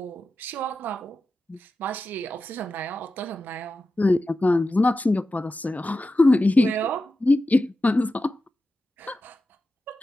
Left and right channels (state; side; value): normal; both; correlation 0.92